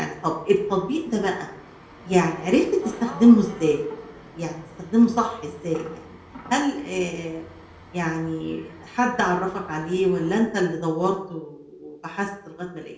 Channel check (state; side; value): identical; both; correlation 1.00